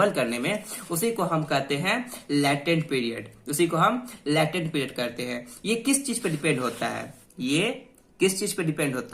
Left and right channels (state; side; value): identical; both; correlation 1.00